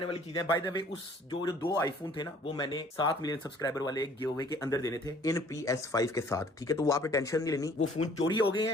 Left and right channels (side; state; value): both; normal; correlation 0.56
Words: वाली चीजें। बाय द वे उस जो 2 आईफोन थे ना, वो मैंने 7 मिलियन सब्सक्राइबर वाले गिव अवे के अंदर देने थे इन PS5 के साथ, ठीक है। तो वो आपने टेंशन नहीं लेनी, वो फोन चोरी हो गए